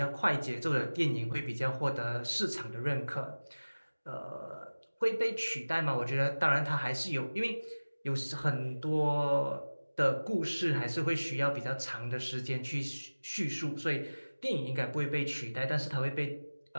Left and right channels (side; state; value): both; inverted; correlation -1.00